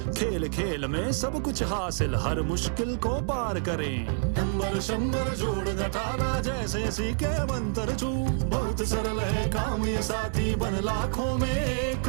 खेल खेल में सब कुछ हासिल, हर मुश्किल को पार करें। नंबर शंबर जोड़ घटाना, जैसे सीखे मंत्र छू। बहुत सरल है काम ये साथी, बन लाखों में एक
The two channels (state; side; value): silent; left; 60 dB below the other